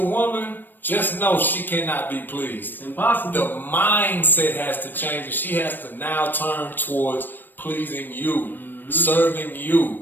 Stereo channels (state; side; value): late; right; 0.092 ms